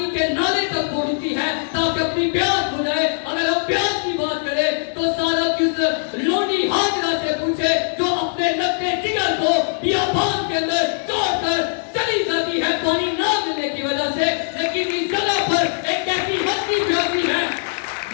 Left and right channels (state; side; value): silent; right; digital silence